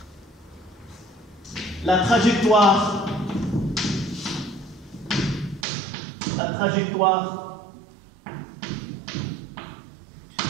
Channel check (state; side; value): drops out; left; at 5.7 s